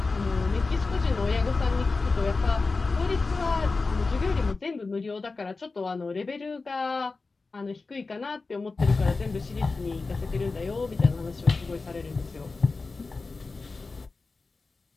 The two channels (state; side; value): quieter; right; 3.9 dB